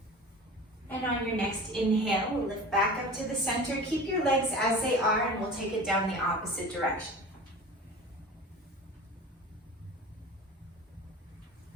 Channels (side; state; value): both; normal; correlation 0.37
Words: And on your next inhale, we'll lift back up to the center. Keep your legs as they are, and we'll take it down the opposite direction.